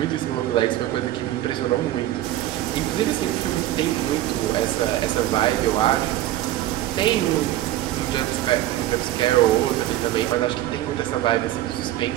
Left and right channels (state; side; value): quieter; left; 14.2 dB